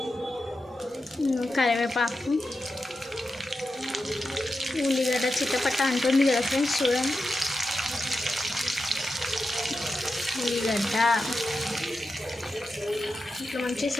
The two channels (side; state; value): both; normal; correlation 0.90